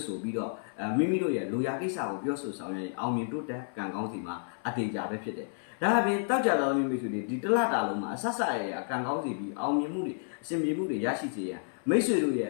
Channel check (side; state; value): right; silent; 57 dB below the other